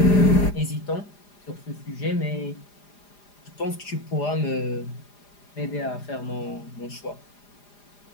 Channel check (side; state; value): right; late; 4.9 ms